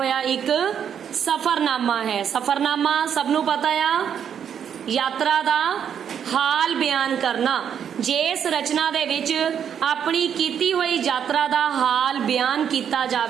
ਇੱਕ ਸਫਰਨਾਮਾ ਹੈ। ਸਫਰਨਾਮਾ ਸਭ ਨੂੰ ਪਤਾ ਆ, ਯਾਤਰਾ ਦਾ ਹਾਲ ਬਿਆਨ ਕਰਨਾ। ਜੇ ਇਸ ਰਚਨਾ ਦੇ ਵਿੱਚ ਆਪਣੀ ਕੀਤੀ ਹੋਈ ਯਾਤਰਾ ਦਾ ਹਾਲ ਬਿਆਨ ਕੀਤਾ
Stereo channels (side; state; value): left; quieter; 8.3 dB